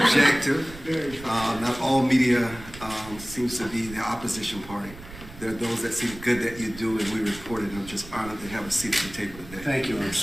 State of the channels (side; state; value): right; noise; rumble, 16 dB below the sound